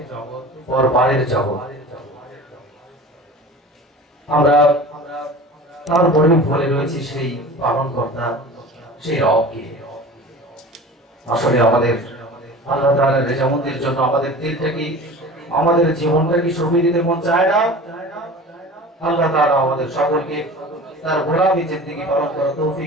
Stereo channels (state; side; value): normal; both; correlation 0.38